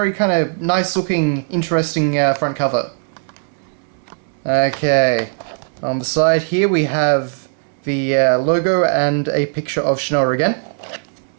kind of nice-looking, interesting front cover. Okay, on the side here we have the logo and a picture of Shinoa again.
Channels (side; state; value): left; silent; digital silence